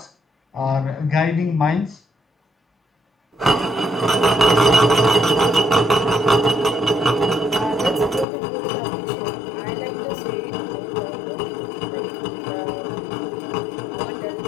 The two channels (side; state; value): right; drops out; at 8.2 s